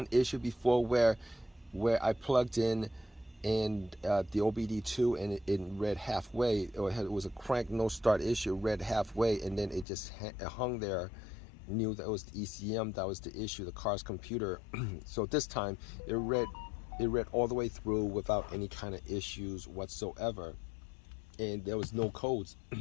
issue before where I plugged in and the OBD2 and it read halfway. It was a crank no start issue. It read halfway and then it just hung there. Knew that it was the ECM that was the issue, the car's computer. So this time it read all the way through without any kind of issues whatsoever, and there was no codes.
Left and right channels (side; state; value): right; drops out; at 9.9 s